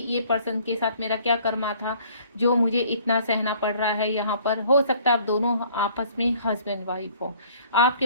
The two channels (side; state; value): both; inverted; correlation -0.57